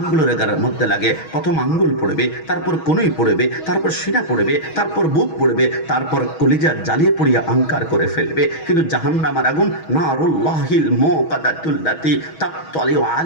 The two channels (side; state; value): right; late; 6.3 ms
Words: মধ্যে লাগে, প্রথম আঙ্গুল পড়বে, তারপর কনুই পড়বে, তারপর সিনা পড়বে, তারপর বুক পড়বে, তারপর কলিজা জ্বালিয়ে পড়িয়া আঙ্কার করে ফেলবে। কিন্তু জাহান্নামের আগুন নারুল্লাহিল মুকাদ্দাতুল্লাতি তাকতালিউ